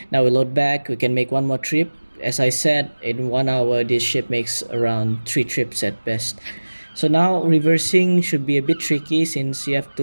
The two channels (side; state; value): both; inverted; correlation -1.00